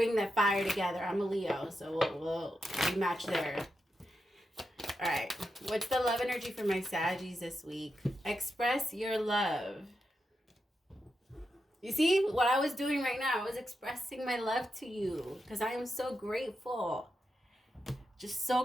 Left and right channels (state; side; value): normal; both; correlation 0.87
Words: that fire together. I'm a Leo, so we match there. All right. What's the love energy for my Saggies this week? Express your love. You see what I was doing right now? I was expressing my love to you because I am so grateful. Just